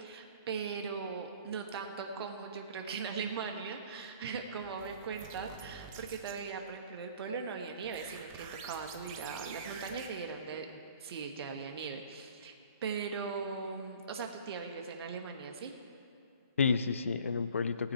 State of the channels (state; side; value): inverted; both; correlation -0.50